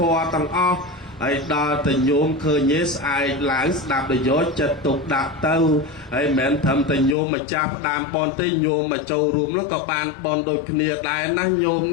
ម៌ទាំងអស់ហើយដល់តែញោមឃើញស្អែកឡើងស្ដាប់ដោយយកចិត្តទុកដាក់ទៅហើយមិនមែនត្រឹមតែញោមមកចាប់ផ្ដើមបនទេញោមមកចូលរួមនោះក៏បានបនដូចគ្នាដែរណាញោម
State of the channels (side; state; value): right; drops out; at 7.2 s